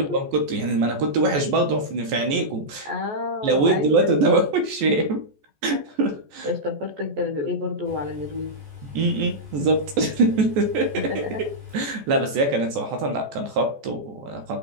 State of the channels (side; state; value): left; late; 14 ms